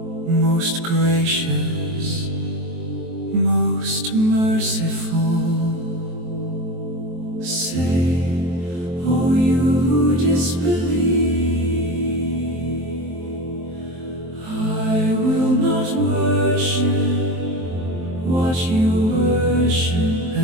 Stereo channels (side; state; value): left; late; 23 ms